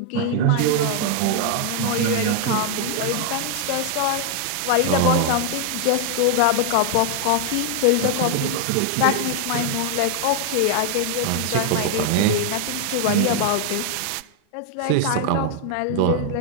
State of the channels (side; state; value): both; different; correlation 0.00